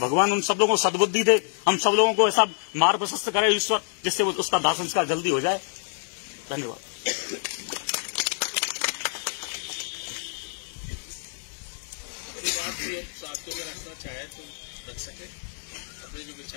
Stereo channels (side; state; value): right; silent; 59 dB below the other